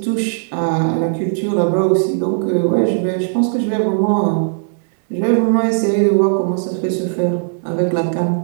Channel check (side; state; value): left; silent; digital silence